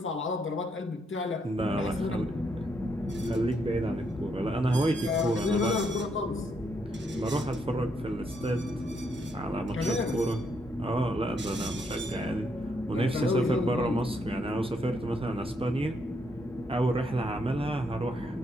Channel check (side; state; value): both; normal; correlation 0.75